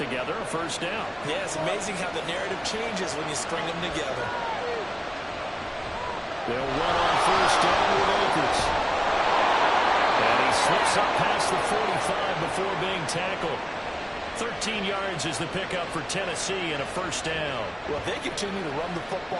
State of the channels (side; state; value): both; identical; correlation 1.00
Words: a first down. Yeah, it's amazing how the narrative changes when you string them together. They'll run on first down with Akers. And he slips up past the 45 before being tackled. 13 yards is the pickup for Tennessee and a first down. Well, if they continue to run the